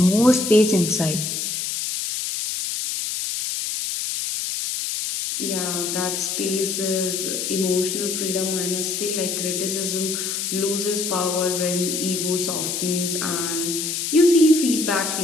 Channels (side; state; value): left; noise; hiss, 2 dB below the sound